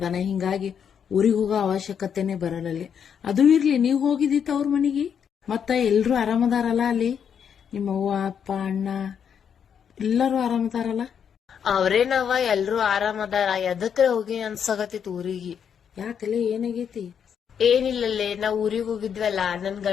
ಹಿಂಗಾಗಿ ಊರಿಗೆ ಹೋಗೋ ಅವಶ್ಯಕತೆನೆ ಬರಲ್ಲಲ್ಲಿ. ಅದು ಇರ್ಲಿ, ನೀವ್ ಹೋಗಿದ್ದಿತ್ತ ಅವ್ರ ಮನಿಗೆ? ಮತ್ತ ಎಲ್ರು ಆರಾಮದಾರಲ್ಲ ಅಲ್ಲಿ? ನಿಮ್ಮ ಅವ್ವ ಅಪ್ಪ ಅಣ್ಣ ಎಲ್ಲರೂ ಆರಾಮದಾರಲ್ಲ? ಅವ್ರೇನವ ಎಲ್ರು ಆರಾಮದಾರ. ಎದಕ್ರೆ ಹೋಗಿ ಅನ್ಸಾಗತ್ತಿತ್ ಊರಿಗೆ. ಯಾಕಲೆ ಏನಾಗೈತಿ? ಏನಿಲ್ಲಲ್ಲೇ, ನಾವ್ ಊರಿಗೆ ಹೋಗಿದ್ವಲ್ಲ, ನನ್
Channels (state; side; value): quieter; right; 7.8 dB